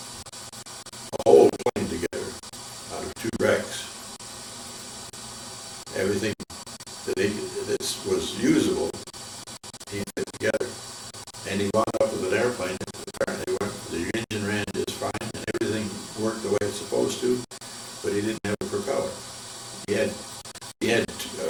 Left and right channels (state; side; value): identical; both; correlation 1.00